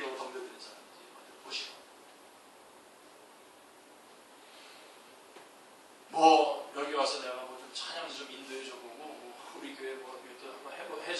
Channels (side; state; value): both; identical; correlation 1.00